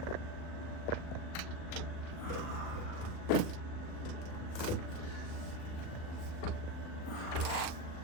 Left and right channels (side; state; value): right; late; 39 ms